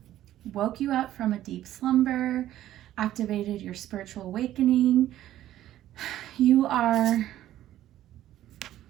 woke you up from a deep slumber, activated your spiritual awakening. You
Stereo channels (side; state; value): left; quieter; 13.1 dB